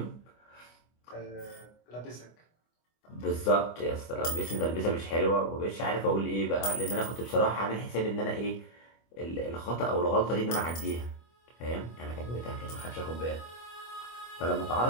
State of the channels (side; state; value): right; late; 25 ms